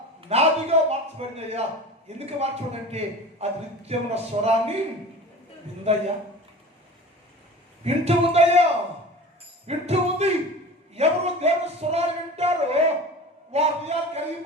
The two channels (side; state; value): both; normal; correlation 0.36